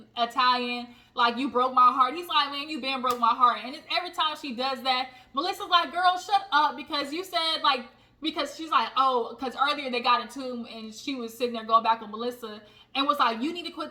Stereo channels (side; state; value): both; identical; correlation 1.00